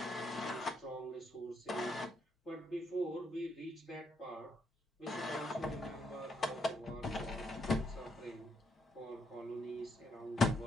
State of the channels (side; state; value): both; normal; correlation 0.76